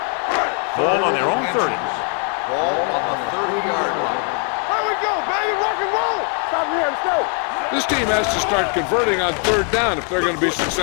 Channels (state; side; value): quieter; right; 39.6 dB